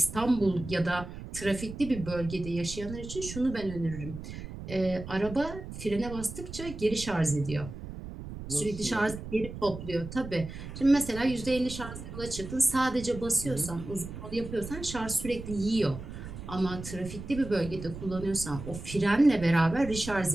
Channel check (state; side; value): noise; right; rumble, 10 dB below the sound